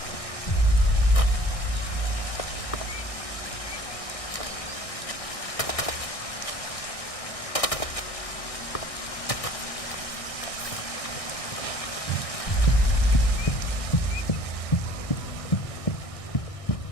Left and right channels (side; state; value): right; late; 1.6 ms